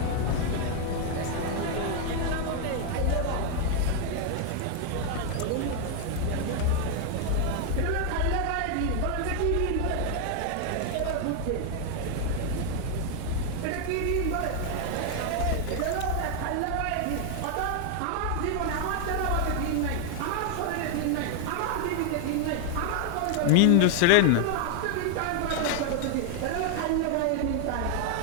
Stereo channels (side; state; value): both; different; correlation 0.00